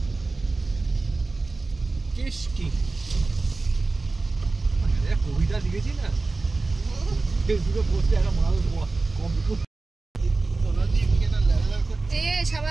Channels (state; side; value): quieter; left; 3.6 dB